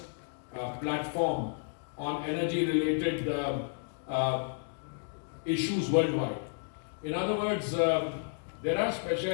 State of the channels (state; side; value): silent; right; 56 dB below the other